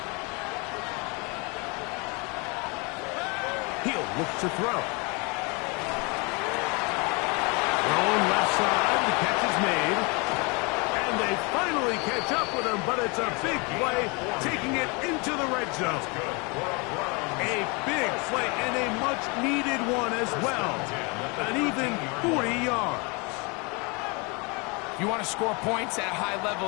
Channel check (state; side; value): quieter; right; 30.0 dB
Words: He'll look to throw. Thrown left side, the catch is made. And they finally catch up with him, but it's a big play, taking it into the red zone. A big play and a much-needed one as well. An even 40 yards. If you want to score points at a high level